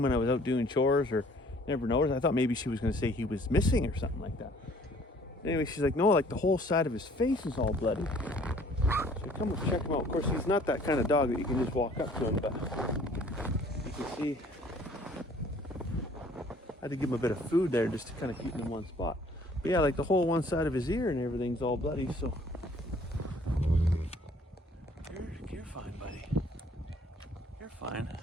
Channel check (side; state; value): both; normal; correlation 0.56